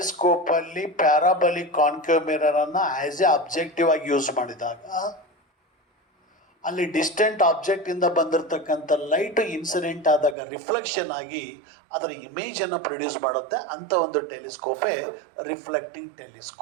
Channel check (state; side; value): drops out; left; at 10.4 s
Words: ಪ್ಯಾರಾಬಲಿಕ್ concave ಮಿರರನ್ನು as A objective ಆಗಿ use ಮಾಡಿದಾಗ ಅಲ್ಲಿ distant ಆಬ್ಜೆಕ್ಟಿಂದ ಬಂದಿರತಕ್ಕಂಥ light incident ಆದಾಗ reflection ಆಗಿ ಅದರ ಇಮೇಜನ್ನು produce ಮಾಡುತ್ತೆ. ಅಂಥ ಒಂದು ಟೆಲಿಸ್ಕೋಪೇ reflecting